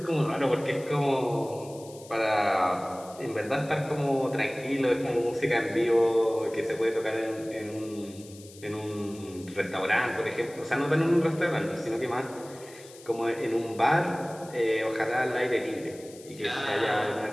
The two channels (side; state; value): left; noise; hiss, 21 dB below the sound